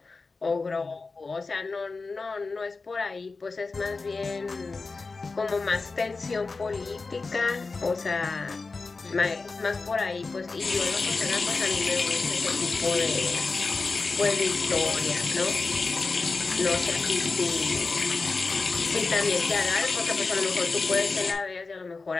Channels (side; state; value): right; quieter; 4.0 dB